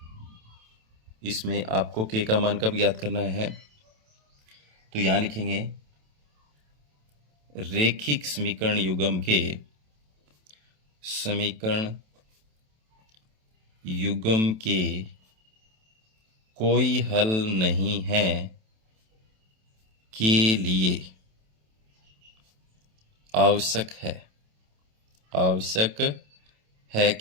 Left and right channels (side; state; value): left; late; 27 ms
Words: इसमें आपको k का मान कब ज्ञात करना है, तो यहां लिखेंगे रेखिक समीकरण युग्म के समीकरण युग्म के कोई हल नहीं है के लिए आवश्यक है, आवश्यक है,